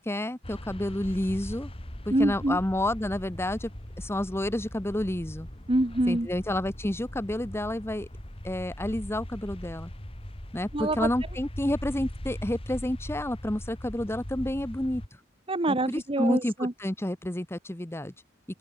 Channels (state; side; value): normal; both; correlation 0.82